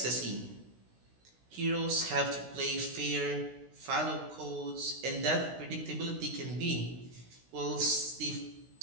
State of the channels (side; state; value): left; late; 16 ms